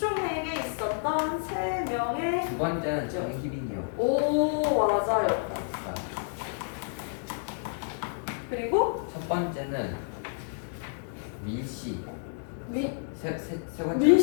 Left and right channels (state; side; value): silent; right; digital silence